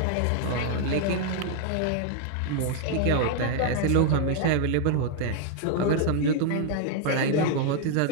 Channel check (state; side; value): different; both; correlation 0.00